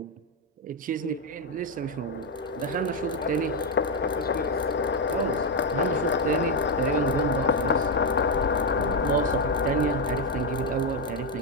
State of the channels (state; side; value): normal; both; correlation 0.03